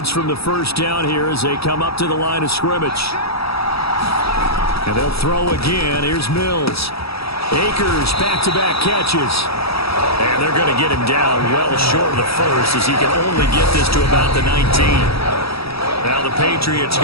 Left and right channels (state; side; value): late; right; 0.77 ms